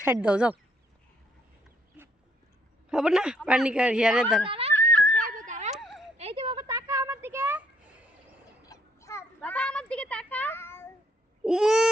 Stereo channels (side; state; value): both; normal; correlation 0.68